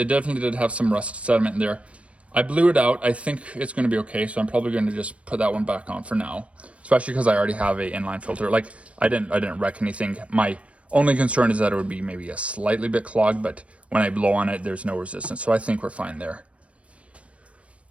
definitely did have some rust sediment in there. I blew it out. I think it's going to be okay, so I'm probably going to just put that one back on for now, especially because I already have a inline filter. Like, I didn't wreck anything. My only concern is that it would be maybe a slightly bit clogged, but when I blow on it, there's no resistance, so I think we're fine there.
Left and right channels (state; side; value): late; left; 0.063 ms